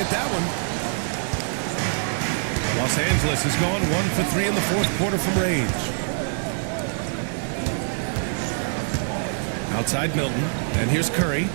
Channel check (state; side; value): silent; left; digital silence